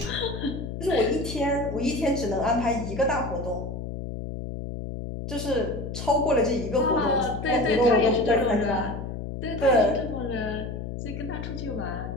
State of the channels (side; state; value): left; noise; hum, 6 dB below the sound